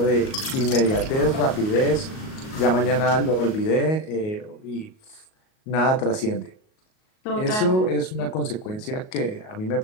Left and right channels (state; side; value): late; right; 38 ms